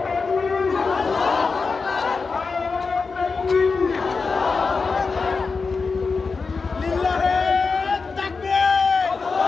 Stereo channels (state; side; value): quieter; right; 4.6 dB